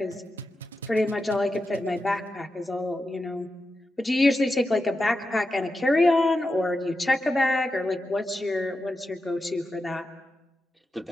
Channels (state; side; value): normal; both; correlation 0.89